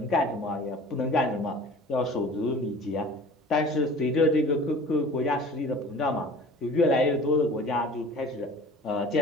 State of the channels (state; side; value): normal; both; correlation 0.44